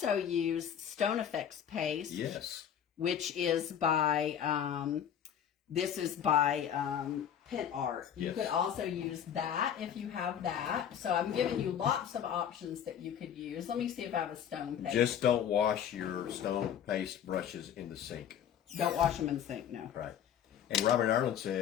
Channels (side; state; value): right; quieter; 9.1 dB